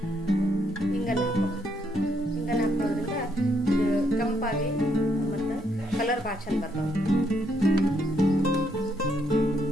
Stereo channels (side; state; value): both; normal; correlation 0.74